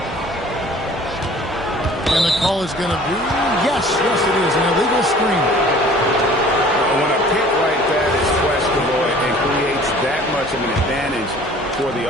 And the call is going to be, yes, it is, an illegal screen. When a pick like that is questionable and creates that much of an advantage for the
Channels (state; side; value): normal; both; correlation 0.49